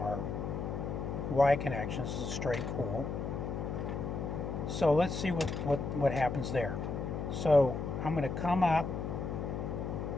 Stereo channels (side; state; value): left; noise; hum, 3 dB below the sound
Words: Y connections. This is straight cool. So let's see what happens there. So I'm going to come up.